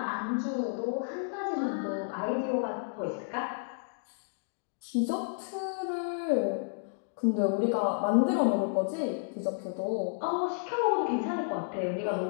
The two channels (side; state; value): right; silent; digital silence